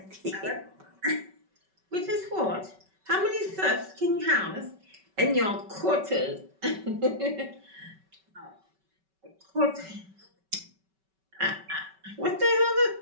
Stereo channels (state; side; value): late; left; 5.3 ms